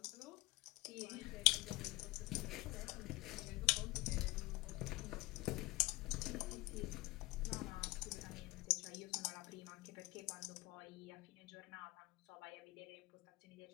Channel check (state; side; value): quieter; right; 21.9 dB